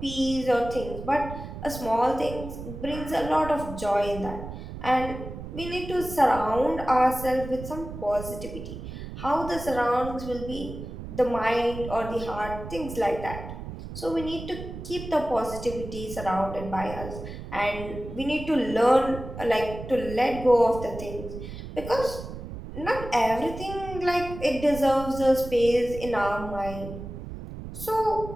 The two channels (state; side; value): noise; right; rumble, 10 dB below the sound